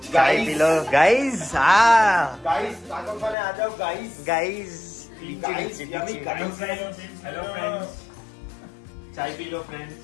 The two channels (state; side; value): drops out; right; at 3.4 s